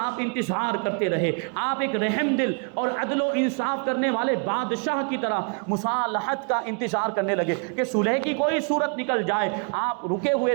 انتظار کرتے رہے. آپ ایک رحم دل اور عدل و انصاف کرنے والے بادشاہ کی طرح مصالحت کا انتظار کرنے لگے کہ صلح کی کوئی صورت نکل جائے. آپ رکے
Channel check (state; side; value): quieter; left; 39.7 dB